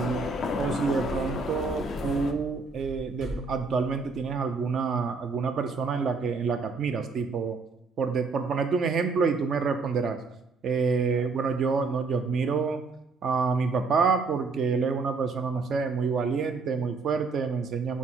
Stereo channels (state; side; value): quieter; left; 4.3 dB